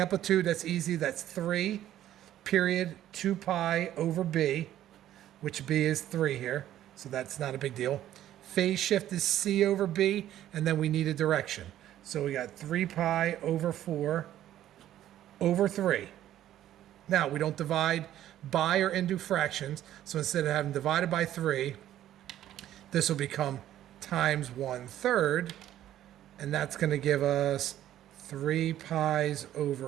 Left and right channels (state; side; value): quieter; left; 12.4 dB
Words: that's easy. That's 3 period 2 pi over b, which b is 3 here, so that's not a big deal. Phase shift is c over b, and then we need a direction. So we got 3 pi over 4 over 3. Now, we don't divide by or into fractions, so instead of having divided by 3, this will become times 1/3, and that's going to give us 3 pi's